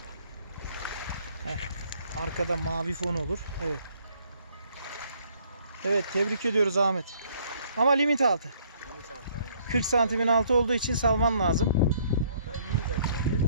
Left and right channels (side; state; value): both; inverted; correlation -0.64